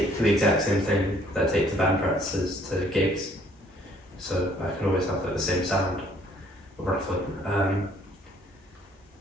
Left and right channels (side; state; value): both; normal; correlation 0.61